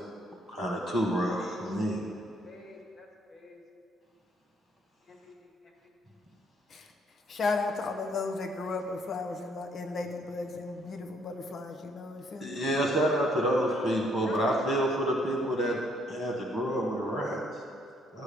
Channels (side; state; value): both; normal; correlation 0.68